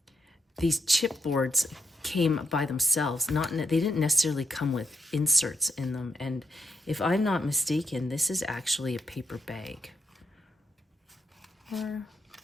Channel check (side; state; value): both; normal; correlation 0.81